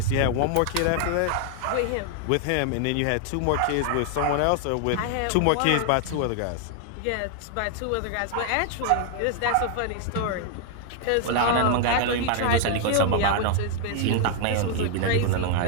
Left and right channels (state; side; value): different; both; correlation 0.00